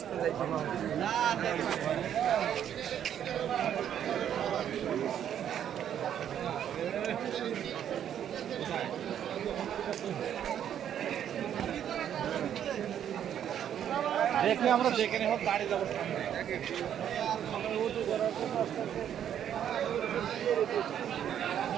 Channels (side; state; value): left; quieter; 9.7 dB